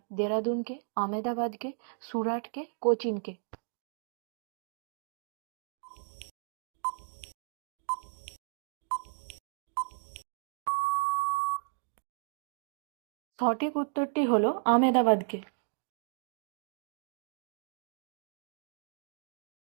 দেরাদুনকে, আমেদাবাদকে, সুরাটকে, কোচিনকে? সঠিক উত্তরটি হলো আমেদাবাদকে।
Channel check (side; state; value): left; silent; digital silence